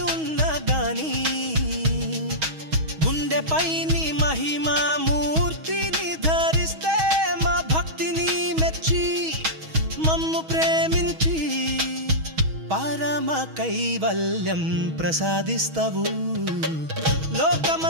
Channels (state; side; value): late; left; 6.3 ms